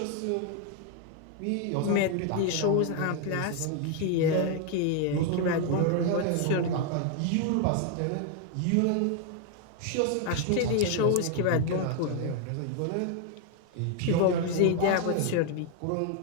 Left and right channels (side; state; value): both; different; correlation 0.00